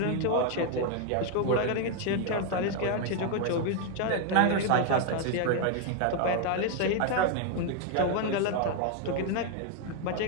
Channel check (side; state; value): both; different; correlation 0.01